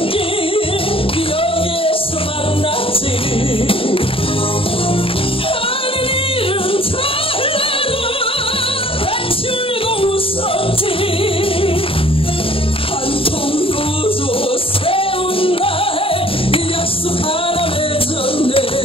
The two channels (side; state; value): right; late; 0.27 ms